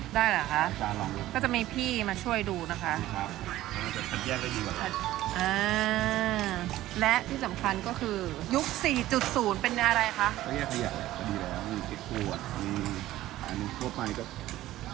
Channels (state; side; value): quieter; left; 15.1 dB